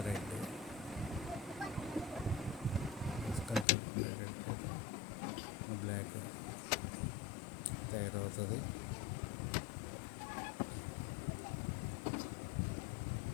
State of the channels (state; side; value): drops out; right; at 3.7 s